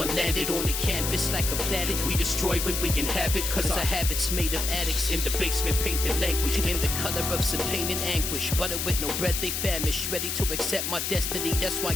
landed on the canvas like a planet. We destroy when we inhabit, cause our habits made of addicts. In the basement painted language in the color of some pain and anguish. Butter with no bread, they famished. Ready to accept my destiny, that's why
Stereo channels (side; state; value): left; noise; hiss, 2 dB below the sound